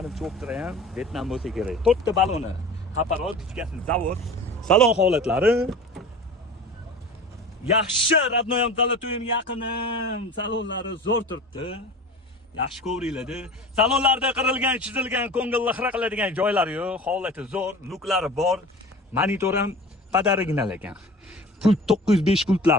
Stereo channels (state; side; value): normal; both; correlation 0.37